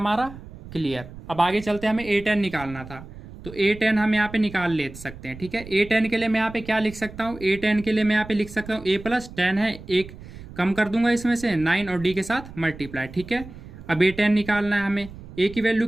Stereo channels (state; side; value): noise; right; rumble, 15 dB below the sound